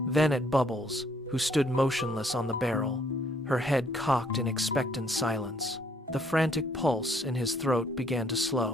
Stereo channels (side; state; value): both; normal; correlation 0.66